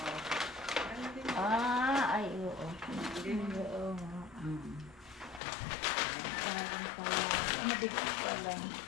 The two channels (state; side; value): drops out; right; at 5.4 s